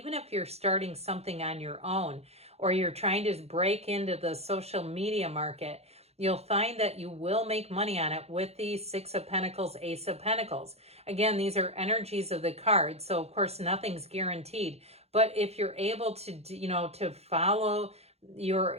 if you're starting something on your own or you're trying to break into the social media market, you'll find that you will make money on it with the Six of Pentacles, Ace of Pentacles. Again, these are energies of the card, so of course nothing's guaranteed. But if you're able to, to follow your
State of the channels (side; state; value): left; late; 0.30 ms